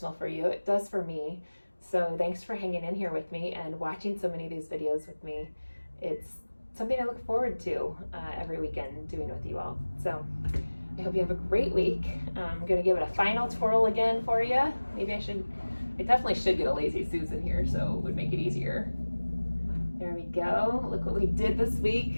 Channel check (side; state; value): both; inverted; correlation -1.00